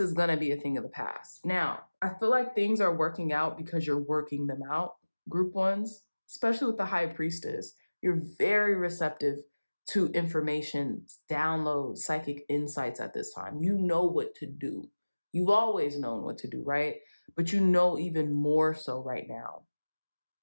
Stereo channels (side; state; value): both; inverted; correlation -1.00